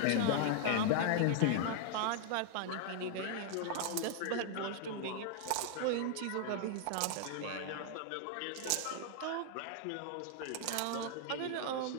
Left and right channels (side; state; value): both; different; correlation 0.00